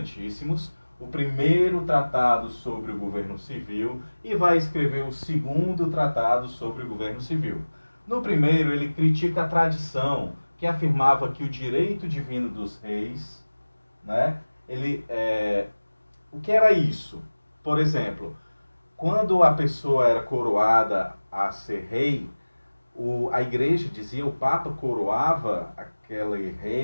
o primeiro tratado sobre o governo civil e vai escrever o segundo tratado sobre o governo civil. No primeiro, ele critica a tradição que afirmava que o direito divino dos reis, né, o que era isso? Por exemplo, quando a pessoa era coroada a ser rei, a igreja dizia, o Papa coroava aquele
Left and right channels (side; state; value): both; inverted; correlation -1.00